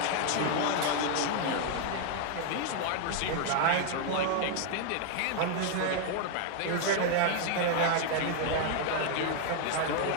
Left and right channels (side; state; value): both; different; correlation 0.00